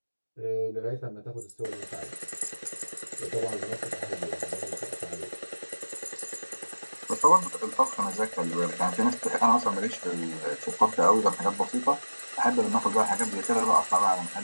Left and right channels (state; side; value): inverted; both; correlation -1.00